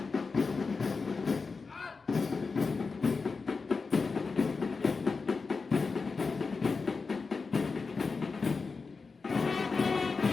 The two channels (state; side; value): quieter; right; 4.5 dB